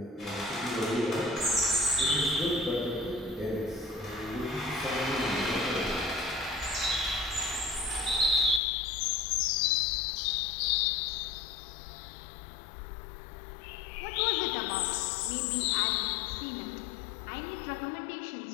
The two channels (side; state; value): right; drops out; at 8.6 s